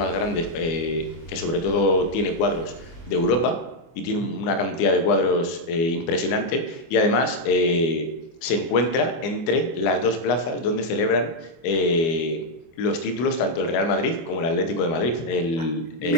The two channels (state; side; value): late; right; 24 ms